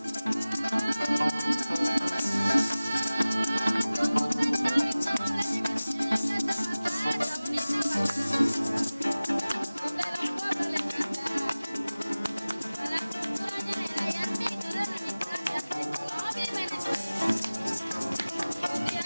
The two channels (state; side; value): inverted; both; correlation -0.98